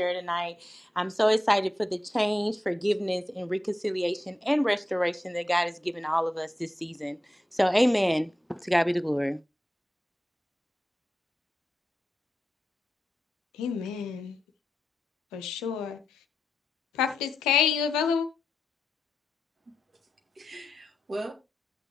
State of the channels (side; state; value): both; normal; correlation 0.89